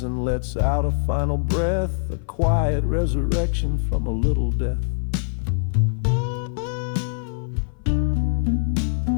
and lets out a final breath, a quiet resurrection from a little death.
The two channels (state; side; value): silent; right; 57 dB below the other